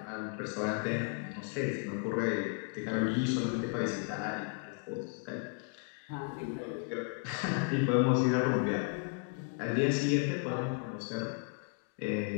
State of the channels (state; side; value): quieter; right; 39.6 dB